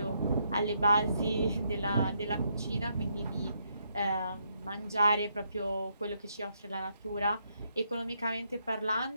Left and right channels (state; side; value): inverted; both; correlation -0.76